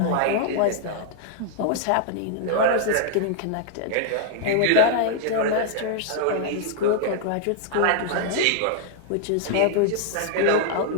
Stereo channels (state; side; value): different; both; correlation -0.01